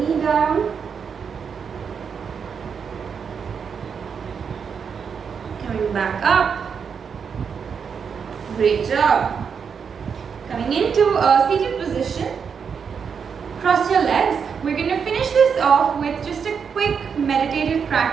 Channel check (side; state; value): left; quieter; 6.5 dB